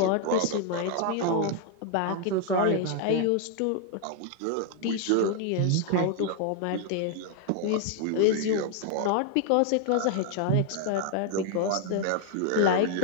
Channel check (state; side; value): different; both; correlation 0.00